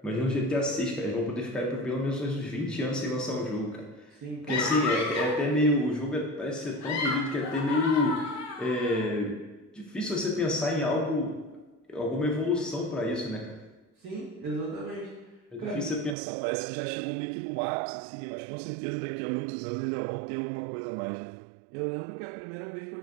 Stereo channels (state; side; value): drops out; left; at 16.2 s